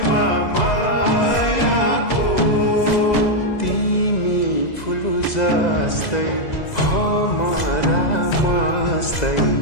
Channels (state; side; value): late; right; 2.0 ms